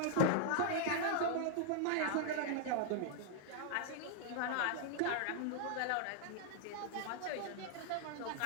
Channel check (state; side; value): different; both; correlation 0.00